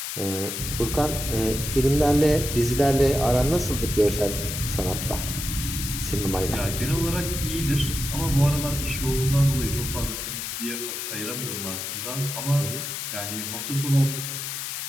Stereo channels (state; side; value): noise; left; hiss, 5 dB below the sound